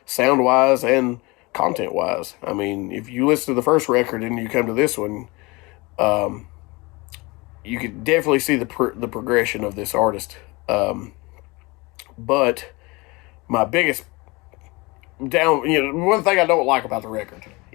sound wise and content wise. I mean, if you listen to the first record and you come to this one, you could definitely see the progression of this artist. But my biggest one thing I don't like about the record,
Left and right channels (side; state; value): right; quieter; 24.8 dB